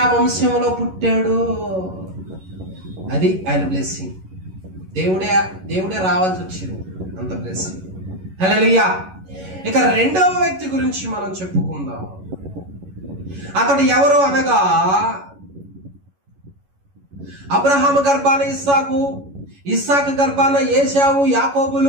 వంశంలో పుట్టాడు. అది ఆయన బ్లెస్సింగ్. దేవుడే రావాల్సి వచ్చింది, అంత బ్లెస్సింగ్. హల్లెలూయా. ఇక రెండవ వ్యక్తి గురించి మనం చెప్పుకుందాం. అతడు ఎవరు అనగా, అబ్రహాము గర్భాన ఇస్సాకు, ఇస్సాకు గర్భాన ఏశావు,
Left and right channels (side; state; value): left; late; 11 ms